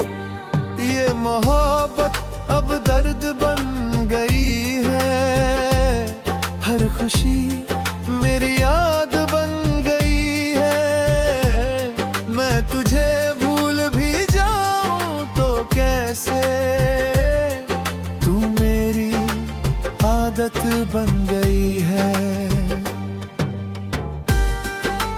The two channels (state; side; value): identical; both; correlation 1.00